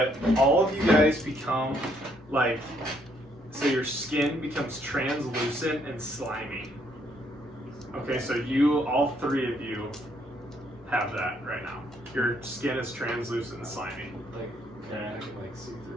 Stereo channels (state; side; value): normal; both; correlation 0.70